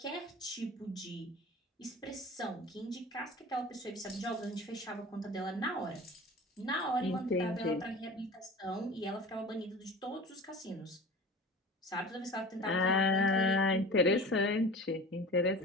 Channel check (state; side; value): normal; both; correlation 0.38